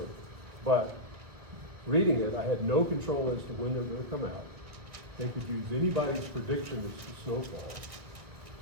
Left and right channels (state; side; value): late; left; 1.7 ms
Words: but reading it, I had no control as to when they were gonna come out. They could use anybody's prediction as to snowfall.